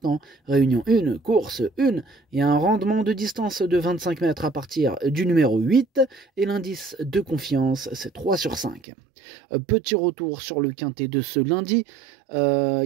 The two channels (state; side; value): drops out; left; at 8.8 s